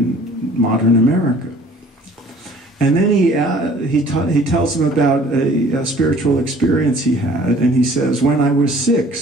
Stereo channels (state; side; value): normal; both; correlation 0.52